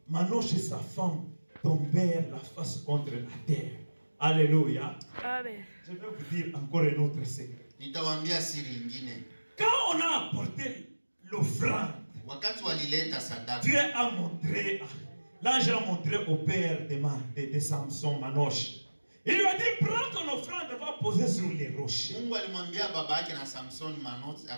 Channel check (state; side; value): inverted; both; correlation -1.00